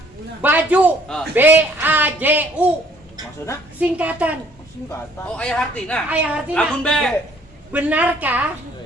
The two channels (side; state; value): both; normal; correlation 0.60